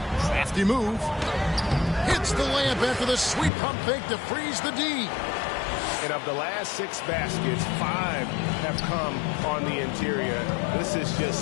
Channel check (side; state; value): right; drops out; at 3.5 s